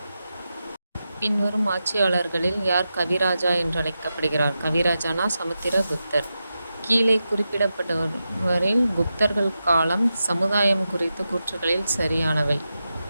பின்வரும் ஆட்சியாளர்களில் யார் கவிராஜா என்று அழைக்கப்படுகிறார்? கவிராஜானா சமுத்திரகுப்தர். கீழே குறிப்பிடப்பட்டவரில் குப்தர்கள் காலம் சமுதாயம் குறித்த கூற்றுகளில் சரியானவை.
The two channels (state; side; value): inverted; both; correlation -0.90